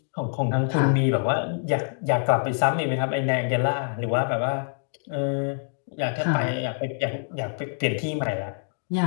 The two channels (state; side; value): silent; right; digital silence